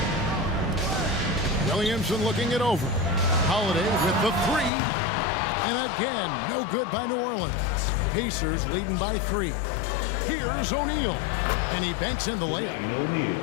Williamson looking it over. Holiday with the three. And again, no good by New Orleans. Pacers leading by 3. Here's O'Neal. And he banks in the layup.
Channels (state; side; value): drops out; right; at 4.7 s